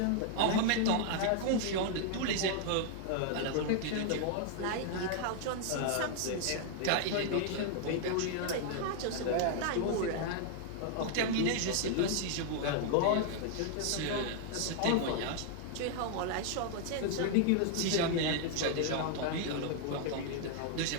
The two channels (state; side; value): different; both; correlation 0.00